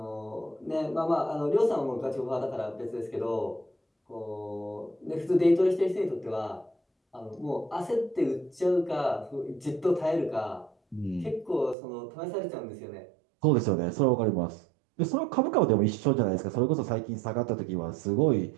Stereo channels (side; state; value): left; drops out; at 11.8 s